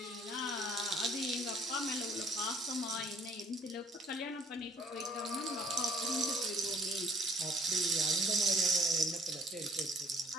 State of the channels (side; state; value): both; normal; correlation 0.58